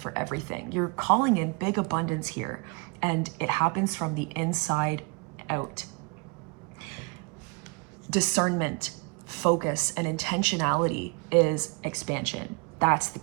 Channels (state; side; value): quieter; left; 31.9 dB